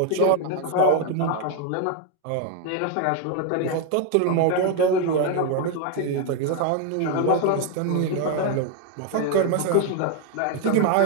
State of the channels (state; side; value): different; both; correlation 0.01